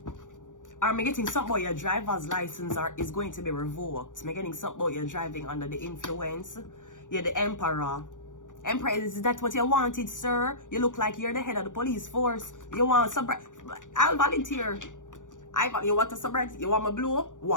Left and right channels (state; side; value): late; right; 0.87 ms